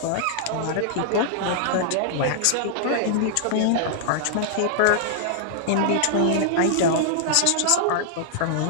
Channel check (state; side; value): different; both; correlation -0.01